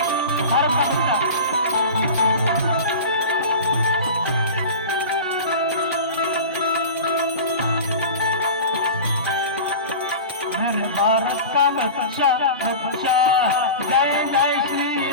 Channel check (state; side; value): inverted; both; correlation -0.32